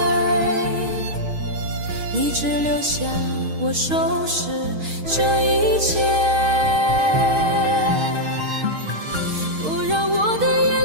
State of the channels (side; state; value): left; late; 6.4 ms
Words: 你只留下我收拾这一切，不让我的眼